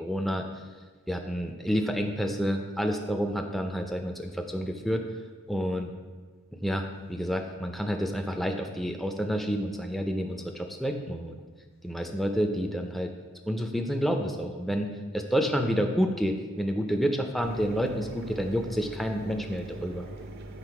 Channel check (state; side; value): normal; both; correlation 0.85